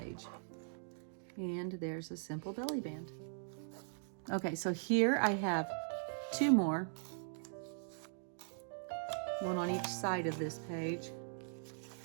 And there's a simple belly band. Okay, so here I have two more. One on each side of this page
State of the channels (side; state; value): left; silent; digital silence